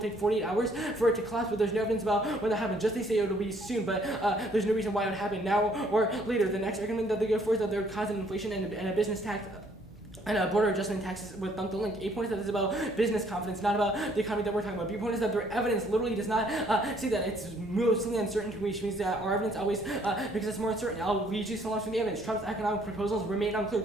48 hours for it to collapse, but there's no evidence about when that happens. Just they say it'll be soon, but there's no reason why it would happen now or later. The next argument that they go for is that they're causing inflation and a business tax. And border adjustment taxes with the link. 8 points that is about business confidence, not about the economy that we're talking about. B point is that their evidence literally does not say that. It's mostly uncertain, which means that our evidence always, because it's more uncertain. I'll read you some lines from the evidence. Trump's economic proposals remain unclear.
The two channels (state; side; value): normal; both; correlation 0.64